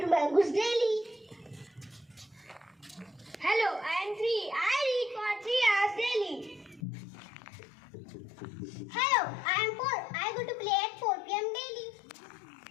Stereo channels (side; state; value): right; drops out; at 6.8 s